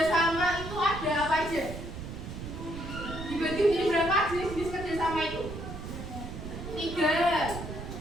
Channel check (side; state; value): right; noise; rumble, 9 dB below the sound